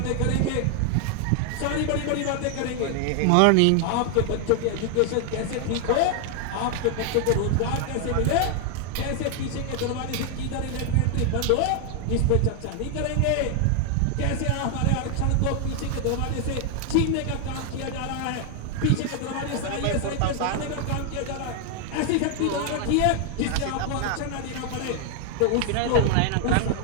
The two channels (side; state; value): both; different; correlation 0.00